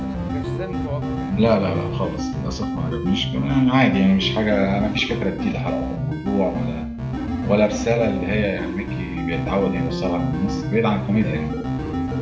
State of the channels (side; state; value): both; identical; correlation 1.00